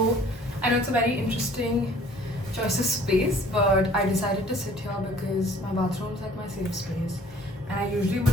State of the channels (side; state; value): both; normal; correlation 0.54